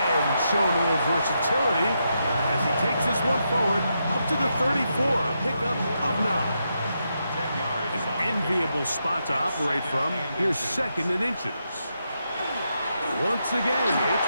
showing a little versatility as he takes this one forward up to the 34, a pickup of 9. An enviable spot to operate from. Here's 2nd and inches. Once again, it's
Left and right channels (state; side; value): inverted; both; correlation -0.83